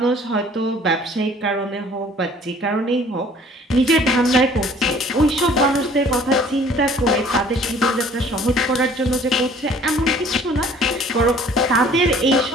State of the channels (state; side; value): normal; both; correlation 0.53